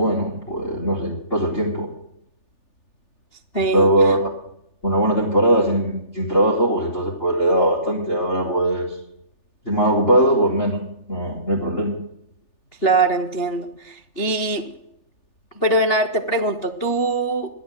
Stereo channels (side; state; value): right; late; 3.4 ms